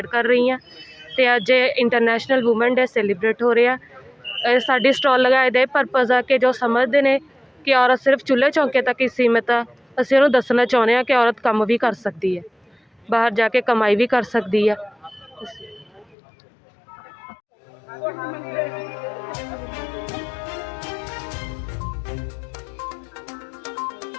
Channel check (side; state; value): right; drops out; at 16.2 s